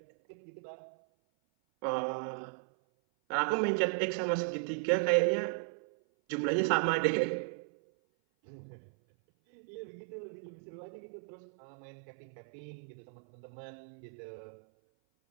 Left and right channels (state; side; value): silent; left; 54 dB below the other